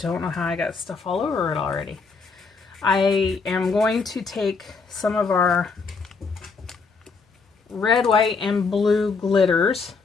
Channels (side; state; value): right; quieter; 4.7 dB